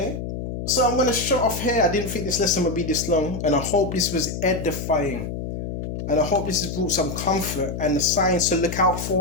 So I'm going to shut off here. I didn't think this lesson would be this long. And I hope this was edifying. And I hope this has brought some comfort and the signs to look out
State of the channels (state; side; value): noise; left; hum, 6 dB below the sound